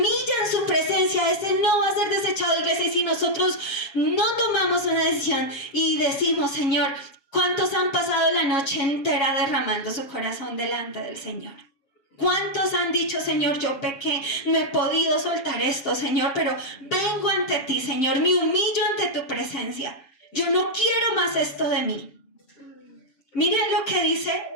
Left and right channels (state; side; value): late; right; 7.2 ms